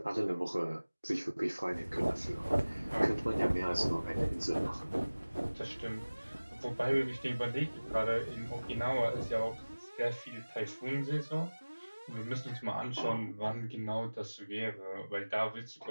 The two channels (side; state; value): both; inverted; correlation -1.00